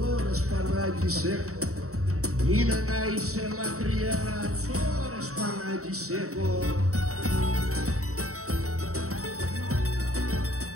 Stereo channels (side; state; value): left; late; 0.64 ms